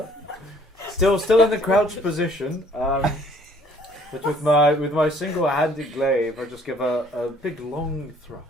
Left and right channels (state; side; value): normal; both; correlation 0.59